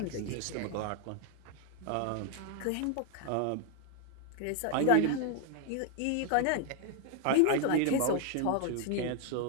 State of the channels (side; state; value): both; different; correlation 0.00